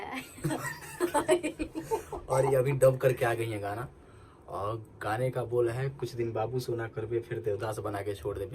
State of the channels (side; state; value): both; identical; correlation 1.00